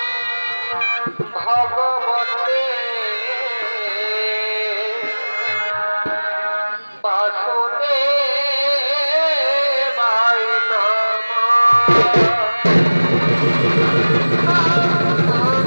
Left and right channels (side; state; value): both; inverted; correlation -1.00